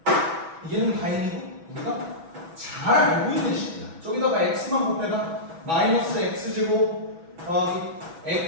얘는 다행히도 우리가 잘 알고 있는 식이야. 저기다가 x만 곱해봐. 마이너스 x제곱 더하기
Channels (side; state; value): left; late; 6.1 ms